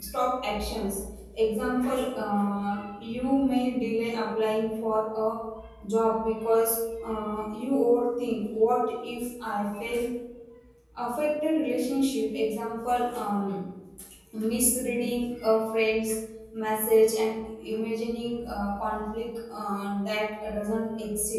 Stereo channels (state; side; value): identical; both; correlation 1.00